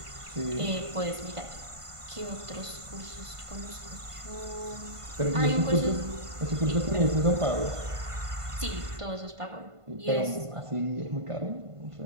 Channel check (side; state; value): left; late; 1.5 ms